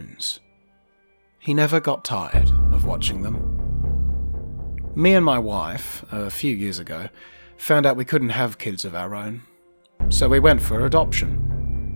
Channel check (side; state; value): both; inverted; correlation -1.00